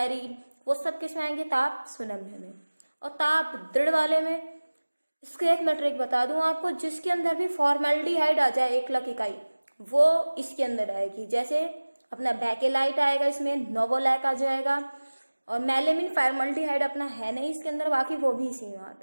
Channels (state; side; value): inverted; both; correlation -1.00